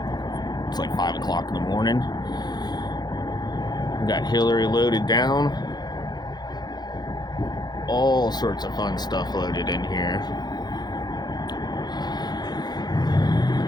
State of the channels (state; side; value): late; right; 0.20 ms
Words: It's like 5 o'clock in the morning. We got Hillary loaded down. All sorts of fun stuff loaded in here.